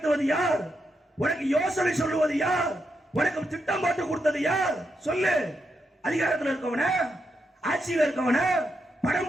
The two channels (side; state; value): both; normal; correlation 0.83